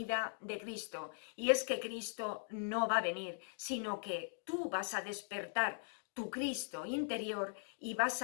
de Cristo. Y es que Cristo no va a venir, sino que tú vas a despertar tu Cristo interior y vas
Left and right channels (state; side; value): silent; right; digital silence